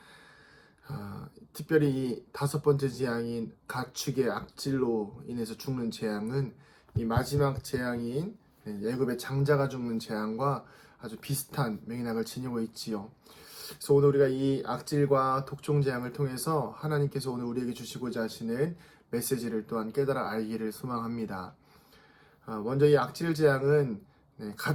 특별히 이 다섯 번째 재앙인 가축의 악질로 인해서 죽는 재앙은 이 마지막 재앙인 애굽의 장자가 죽는 재앙과 아주 비슷한 맥락을 지니고 있지요. 그래서 오늘 우리가 이 악질과 독종 재앙을 통해서 하나님께서 오늘 우리에게 주시고자 하시는 메시지를 또한 깨달아 알기를 소망합니다. 먼저 이 악질 재앙은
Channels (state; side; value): identical; both; correlation 1.00